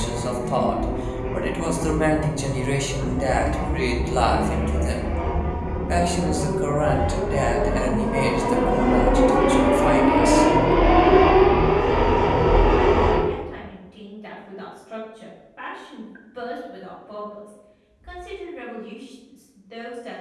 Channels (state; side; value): identical; both; correlation 1.00